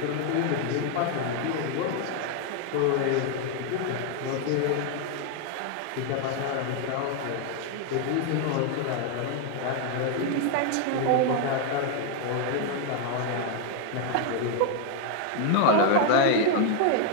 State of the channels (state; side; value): different; both; correlation 0.00